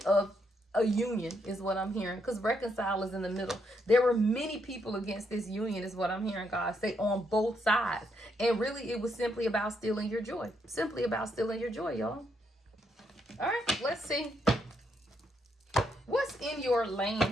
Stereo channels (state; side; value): normal; both; correlation 0.77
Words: of a union is what I'm hearing, because reconcile is in the middle. There were many people against this union is what I'm hearing God say on both sides. And really it was simply about stealing your joy. Simply about stealing your joy, y'all. All right, let's see. What's in your